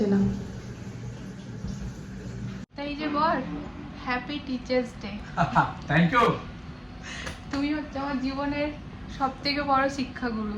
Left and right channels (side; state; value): both; identical; correlation 1.00